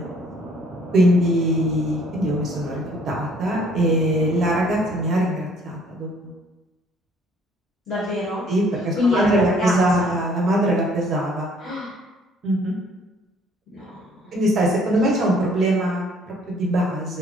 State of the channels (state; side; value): normal; both; correlation 0.60